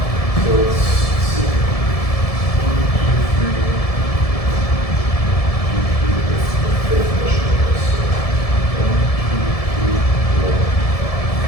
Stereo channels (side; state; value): right; late; 1.7 ms